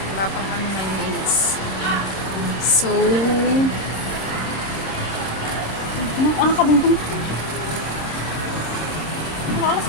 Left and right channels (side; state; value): right; late; 26 ms